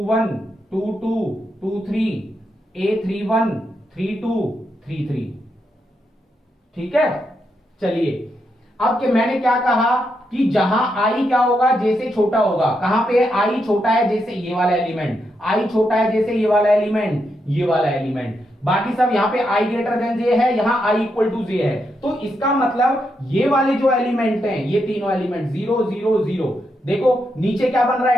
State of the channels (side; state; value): both; normal; correlation 0.82